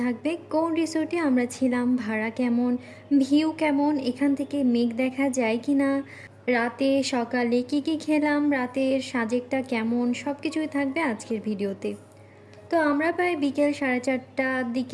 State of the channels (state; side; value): identical; both; correlation 1.00